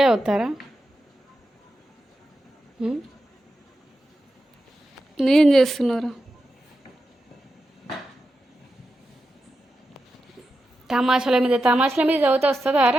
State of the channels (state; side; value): normal; both; correlation 0.89